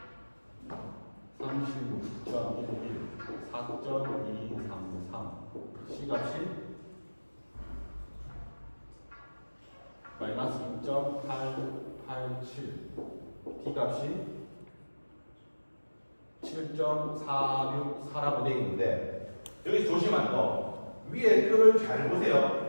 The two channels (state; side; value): inverted; both; correlation -1.00